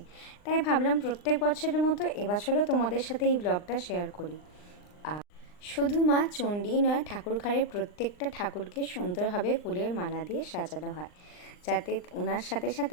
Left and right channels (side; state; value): right; late; 39 ms